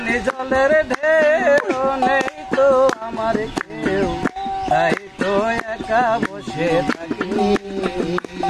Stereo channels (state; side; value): identical; both; correlation 1.00